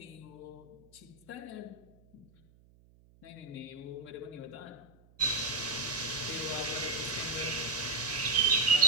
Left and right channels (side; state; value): right; noise; hum, 28 dB below the sound